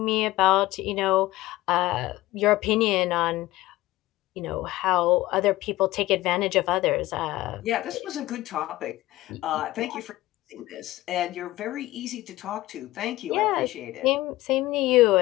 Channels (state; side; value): quieter; right; 17.4 dB